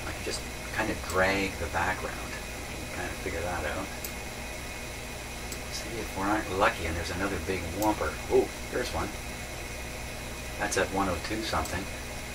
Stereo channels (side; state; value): both; identical; correlation 1.00